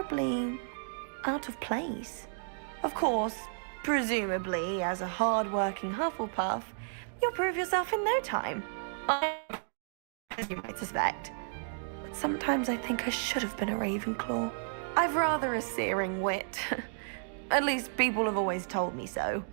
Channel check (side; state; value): left; silent; digital silence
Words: out of place. Of course, presumably, as a hard-working Hufflepuff, you'll prove yourself in no time. As you might suspect. But sometimes I think I should have been a Ravenclaw. I've rather a searing wit. At least people have always told me so.